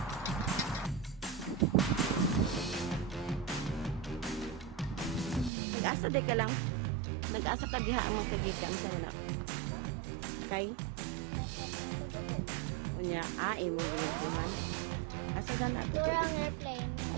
Nag-asa di ka lang. Nag-asa ka diha ang magkagikan sa mana. Kay? Unya, mo ginagdiman. Asa na na dugo ni?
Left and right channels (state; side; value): drops out; left; at 5.5 s